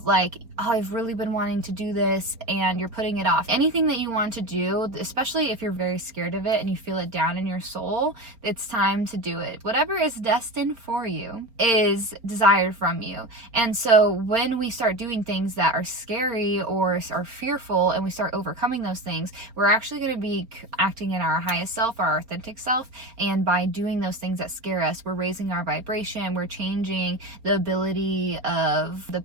like, oh, I've really been wanting to do this and you're putting it off. Anything that you want to do, especially if you're very scared of it and you feel it down in your soul, it's time to do it. Whatever is destined for you is desired from you. And so when we start doing things that are scary or are fearful and we start overcoming those things, we're actually going to be acting in our highest self, our authentic self. And by doing those things that scare us, we're raising our vibration, we're changing the ability of the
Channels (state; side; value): late; left; 4.3 ms